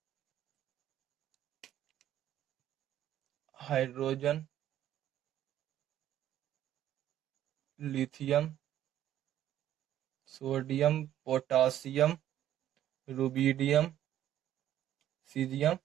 hydrogen, lithium, sodium, potassium, rubidium, caesium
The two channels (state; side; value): quieter; left; 11.9 dB